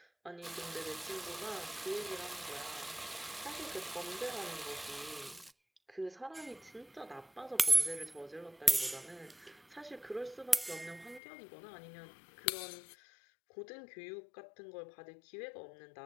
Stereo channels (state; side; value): drops out; right; at 11.2 s